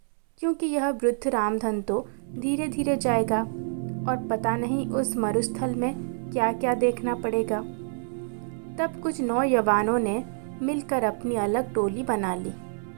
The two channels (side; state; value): left; silent; 60 dB below the other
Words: क्योंकि यह वृद्ध रामधन तो धीरे धीरे जाएगा और पता नहीं उस मरुस्थल में क्या क्या देखना पड़ेगा। तब कुछ नौजवानों ने मिलकर अपनी अलग टोली बना ली